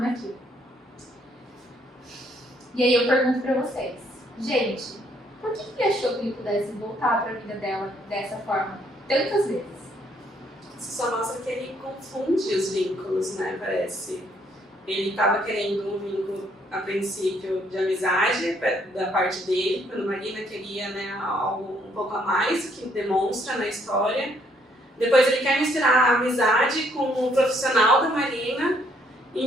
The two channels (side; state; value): both; normal; correlation 0.68